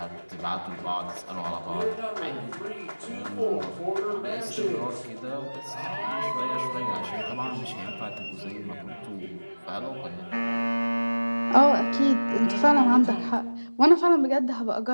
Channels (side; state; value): both; inverted; correlation -1.00